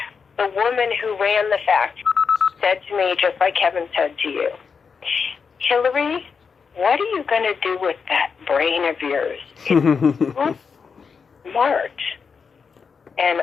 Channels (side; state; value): right; quieter; 5.7 dB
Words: the woman who ran the factory said to me, just like Kevin said to you, Hilary, what are you going to do with that brain of yours? It's smart. And